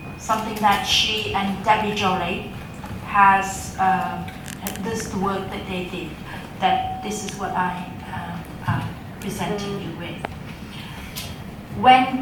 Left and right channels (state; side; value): identical; both; correlation 1.00